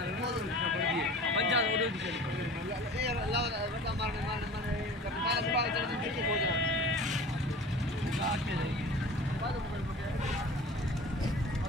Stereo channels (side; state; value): both; normal; correlation 0.41